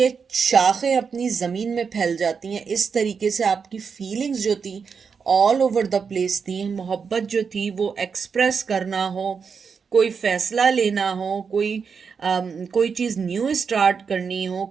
शाखें अपनी ज़मीन में फैल जाती हैं, इस तरीके से आपकी फीलिंग्स जो थी ऑल ओवर द प्लेस थी। मोहब्बत जो थी वो एक्सप्रेस करना हो, कोई फैसला लेना हो, कोई चीज़ न्यू स्टार्ट करनी हो,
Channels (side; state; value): left; quieter; 5.9 dB